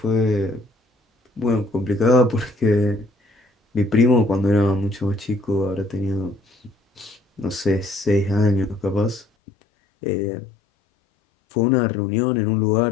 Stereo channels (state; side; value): drops out; right; at 9.2 s